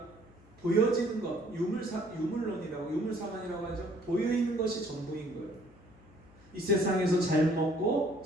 보여지는 것, 유물론이라고 하죠. 보여있는 것이 전부인 거예요. 이 세상에서 잘 먹고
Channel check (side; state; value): left; noise; hum, 25 dB below the sound